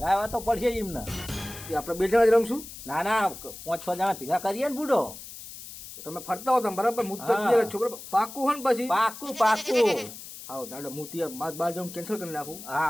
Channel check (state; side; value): noise; left; hiss, 13 dB below the sound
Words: તો પડશે જ એમને એ આપણે બે જણા જ રમશું ના ના 5-6 જણા ભેગા કરીએ ને બુડો તો તમે ફરતા હો તમે બરાબર હું તો હા. છોકરા પાકું હોય ને પછી પાકું પાકું હા દાદા હું ત્યાં માર બહાર જવાનું કેન્સલ કરી નાખું હા